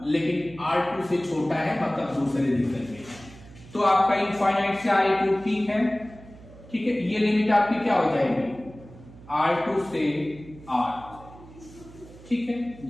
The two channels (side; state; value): right; noise; hum, 20 dB below the sound